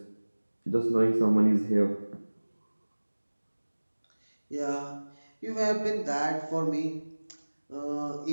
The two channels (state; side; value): inverted; both; correlation -1.00